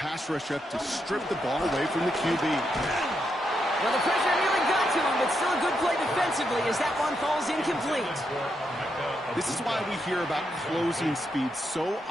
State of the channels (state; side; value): normal; both; correlation 0.82